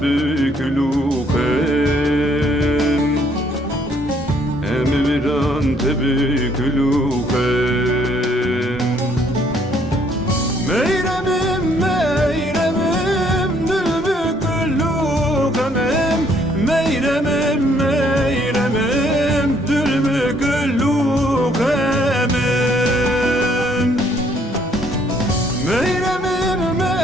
lukem Emirdan tebük lukem Meyremim meyremim Dülbük lukemim Meyremim meyremim Dülbük lukemim Meyremim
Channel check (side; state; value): both; normal; correlation 0.66